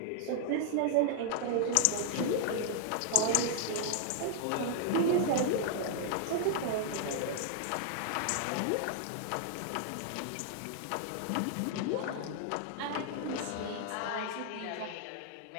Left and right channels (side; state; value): both; different; correlation 0.00